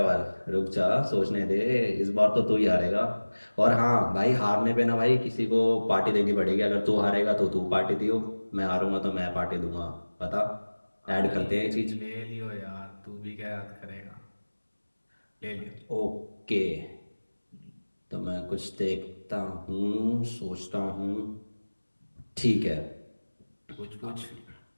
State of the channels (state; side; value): inverted; both; correlation -1.00